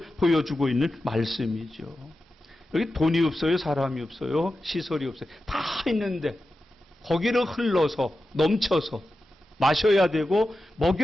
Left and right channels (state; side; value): normal; both; correlation 0.92